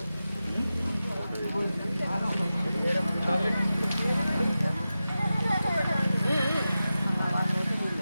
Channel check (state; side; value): inverted; both; correlation -0.93